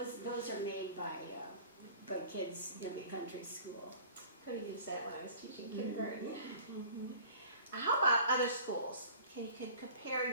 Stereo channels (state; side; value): inverted; both; correlation -0.46